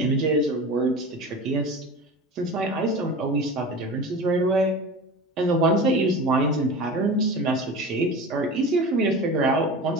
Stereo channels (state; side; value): normal; both; correlation 0.32